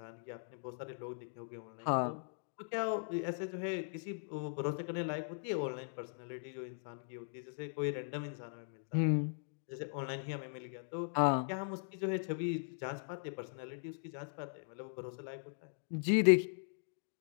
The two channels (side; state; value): right; silent; digital silence